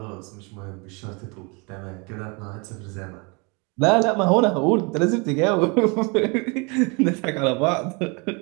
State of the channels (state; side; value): quieter; left; 30.5 dB